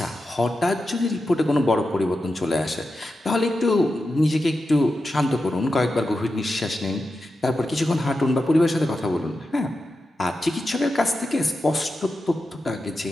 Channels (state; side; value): normal; both; correlation 0.90